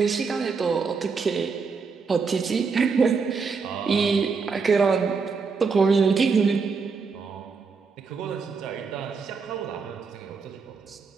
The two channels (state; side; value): quieter; left; 5.1 dB